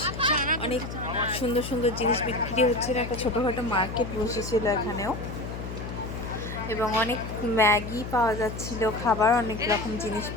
অনেক সুন্দর সুন্দর জিনিস বিক্রি হচ্ছিল, একটা ছোটোখাটো মার্কেট বসেছিল এখানেও, এবং অনেক ম্যাগি পাওয়া যাচ্ছিল, খাবার অনেক রকম জিনিস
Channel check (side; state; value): left; noise; hum, 8 dB below the sound